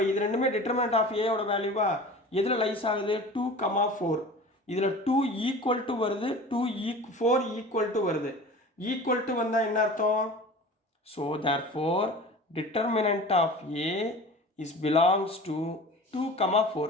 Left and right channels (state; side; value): normal; both; correlation 0.39